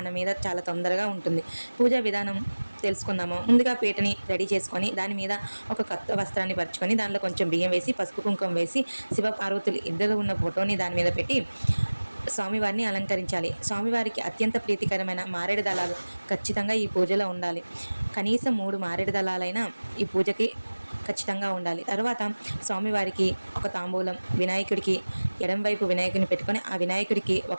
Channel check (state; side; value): inverted; both; correlation -1.00